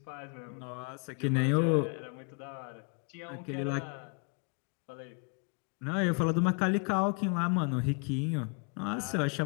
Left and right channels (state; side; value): quieter; right; 36.2 dB